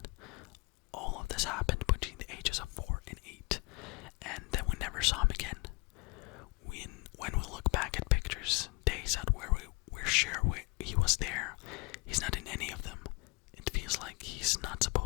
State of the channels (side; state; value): right; quieter; 28.4 dB